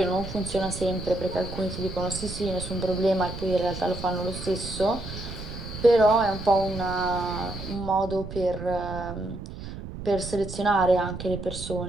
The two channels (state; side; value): noise; right; rumble, 9 dB below the sound